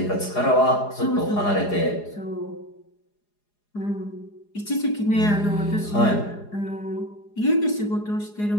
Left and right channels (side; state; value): right; late; 4.8 ms